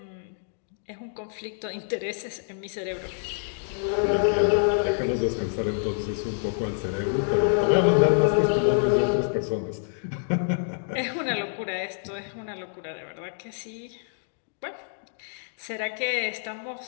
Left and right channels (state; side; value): silent; right; digital silence